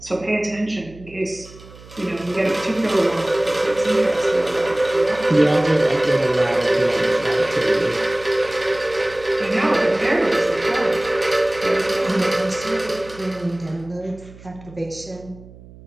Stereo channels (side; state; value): right; noise; hum, 20 dB below the sound